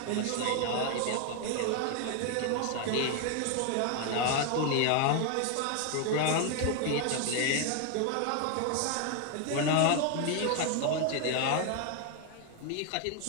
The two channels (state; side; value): different; both; correlation 0.01